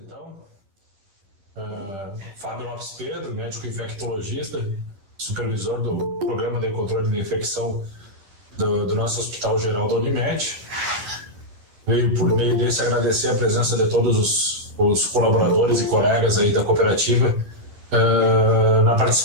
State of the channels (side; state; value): left; late; 10 ms